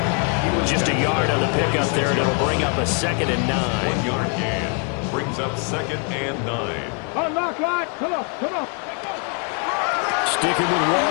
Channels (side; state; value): right; quieter; 37.3 dB